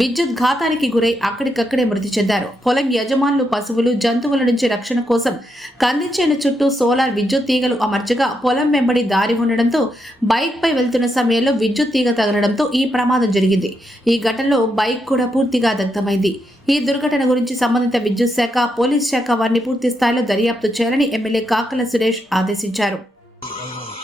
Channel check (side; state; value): both; normal; correlation 0.81